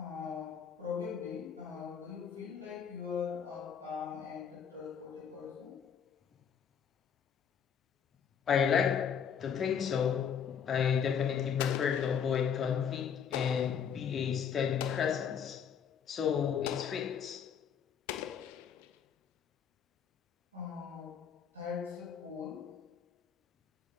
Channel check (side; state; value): right; quieter; 7.6 dB